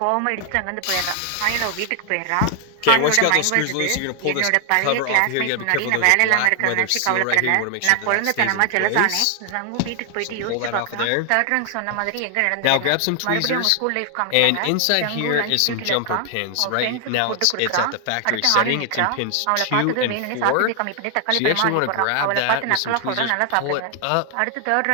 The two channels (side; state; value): both; different; correlation 0.00